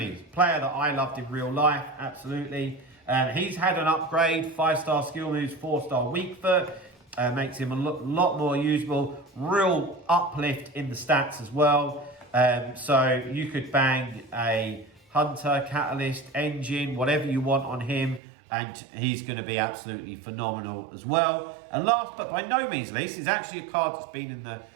player that I loved in real life, absolutely. He's had an upgrade, 5-star skill moves, 4-star weak foot. Makes him a lot more usable. Real uplift in the stats as well. So you could bang a Hunter, Catalyst, Engine, whatever you want on him. And he's going to be absolutely phenomenal as well. And last but by no means least, is actually a card that's been in the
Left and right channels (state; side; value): drops out; left; at 18.2 s